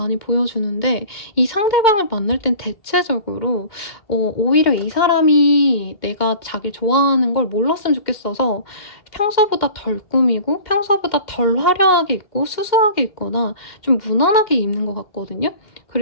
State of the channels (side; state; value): right; late; 2.1 ms